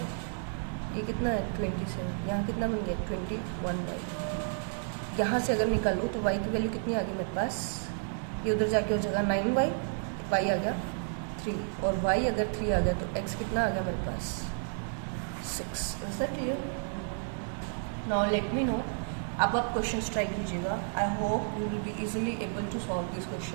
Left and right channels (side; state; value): left; silent; digital silence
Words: ये कितना है 27, यहाँ कितना बन गया 21y। यहाँ से अगर निकालो तो y की वैल्यू कितनी आ गई मेरे पास, ये उधर जाके हो जाएगा 9y, y आ गया 3, और y अगर 3 आ गया तो x कितना आ गया मेरे पास 6। Is that clear. Now let me know, अब आप क्वेश्चंस ट्राई कीजिएगा, I hope you will be easily able to solve this